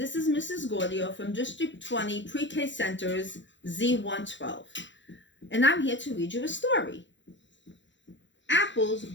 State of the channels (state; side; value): late; right; 0.54 ms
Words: is Mrs. Gaudio from District 20 Pre-K Center's Z112, and I'm here to read you a story. Apples